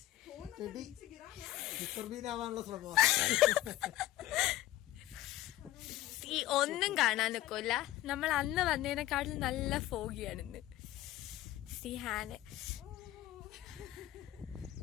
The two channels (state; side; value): quieter; right; 14.7 dB